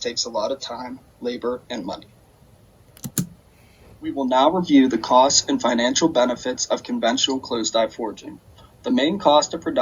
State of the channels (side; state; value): both; identical; correlation 1.00